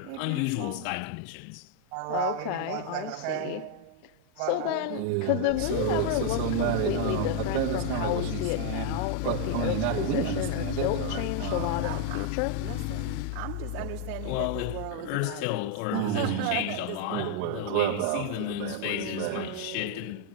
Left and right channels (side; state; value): both; different; correlation 0.00